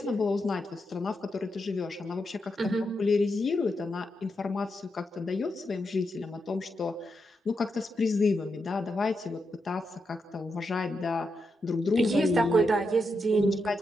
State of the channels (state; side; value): normal; both; correlation 0.85